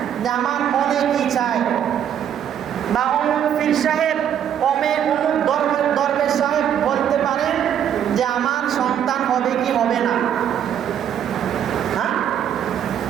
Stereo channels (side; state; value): left; quieter; 9.4 dB